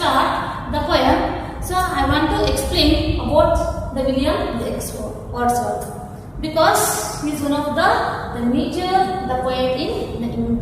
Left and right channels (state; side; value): identical; both; correlation 1.00